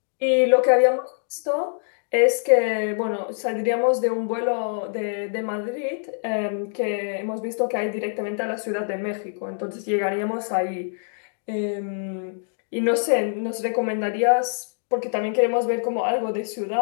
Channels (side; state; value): right; silent; digital silence